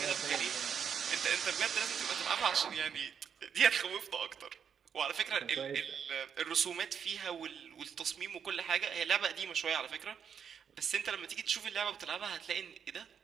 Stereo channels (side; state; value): left; quieter; 7.5 dB